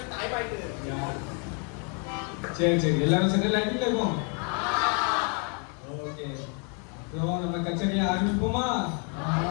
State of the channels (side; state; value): right; quieter; 38.0 dB